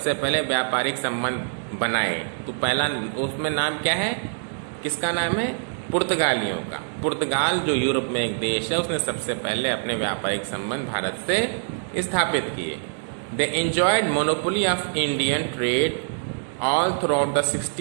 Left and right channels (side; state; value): left; silent; digital silence